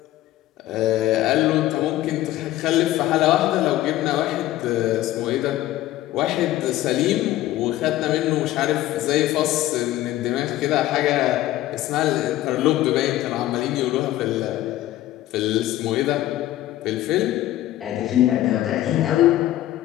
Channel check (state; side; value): quieter; right; 14.8 dB